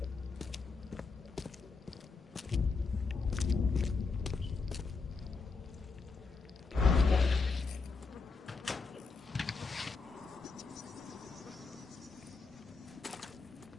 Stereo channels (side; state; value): right; quieter; 4.3 dB